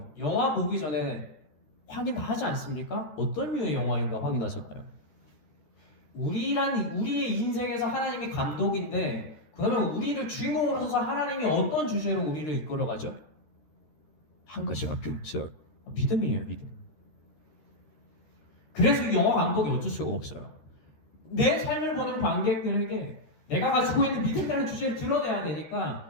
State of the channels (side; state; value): right; late; 13 ms